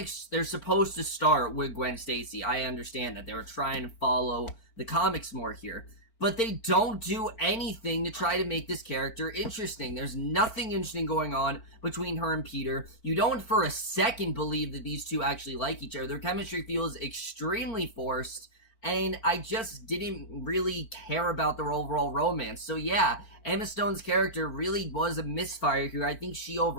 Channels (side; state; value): right; late; 4.4 ms